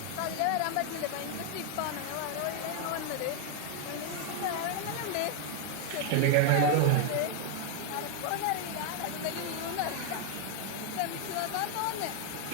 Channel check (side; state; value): both; different; correlation 0.00